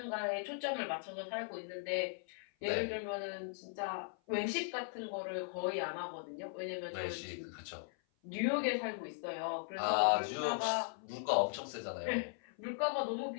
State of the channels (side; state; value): right; silent; 52 dB below the other